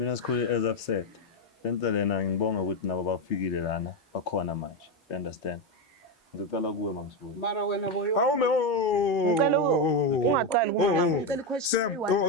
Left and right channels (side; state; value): both; normal; correlation 0.09